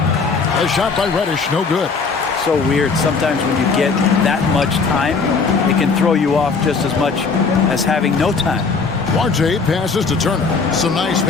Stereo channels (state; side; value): quieter; right; 4.8 dB